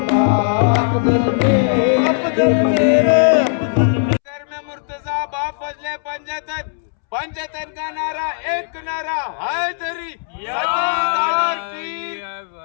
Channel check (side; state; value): right; silent; 67 dB below the other